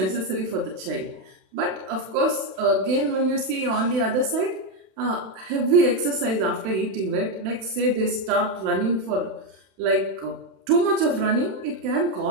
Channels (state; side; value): late; left; 32 ms